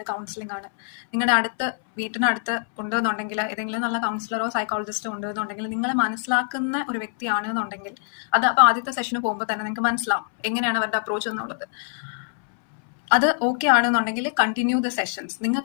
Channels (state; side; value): silent; right; 62 dB below the other